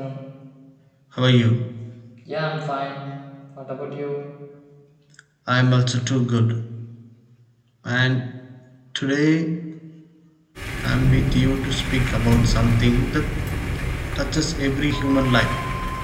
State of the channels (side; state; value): both; identical; correlation 1.00